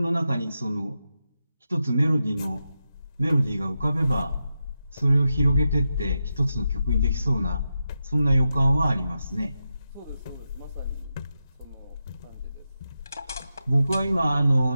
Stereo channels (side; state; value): both; inverted; correlation -0.89